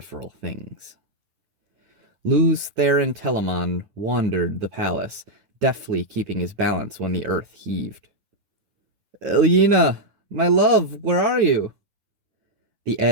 things. Luz Theron Telamon wandered the palace, deftly keeping his balance when the earth heaved. "Elena, my love, where are you?" The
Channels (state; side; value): late; left; 9.8 ms